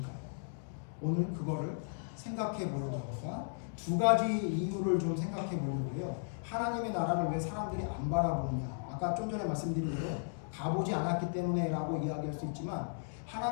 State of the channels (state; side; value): silent; right; digital silence